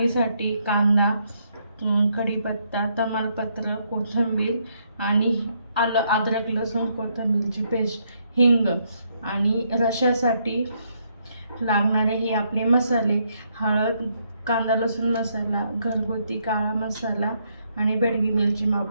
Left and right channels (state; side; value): inverted; both; correlation -0.74